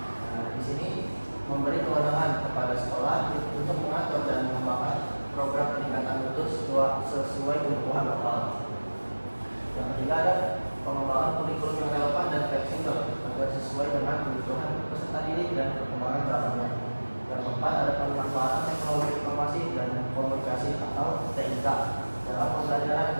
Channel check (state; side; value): inverted; both; correlation -1.00